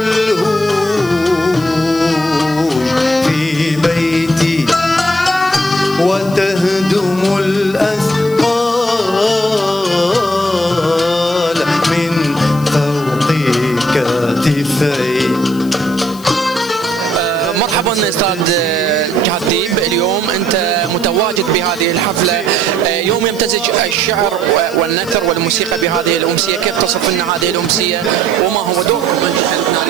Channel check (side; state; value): left; noise; hiss, 19 dB below the sound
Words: في بيتي وتهدم الأثقال من فوق كتفي. مرحبا استاذ جهاد ديب، اليوم انت متواجد بهذه الحفله، يوم يمتزج الشعر والنثر والموسيقى بهذه الامسيه، كيف تصف لنا هذه الامسيه وما هو دوركم